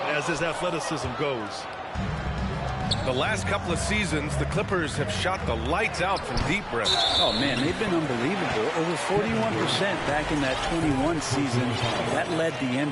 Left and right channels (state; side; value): identical; both; correlation 1.00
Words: as his athleticism goes. The last couple of seasons, the Clippers have shot the lights out from deep, Brett. Oh, man, they've been unbelievable. Over 41% back in that 21 season. That led the